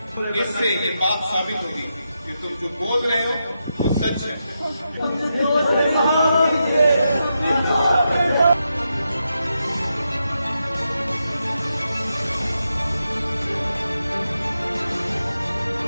इससे ये बात साबित होगी कि तुम जो बोल रहे हो वो सच है।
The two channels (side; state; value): both; inverted; correlation -0.86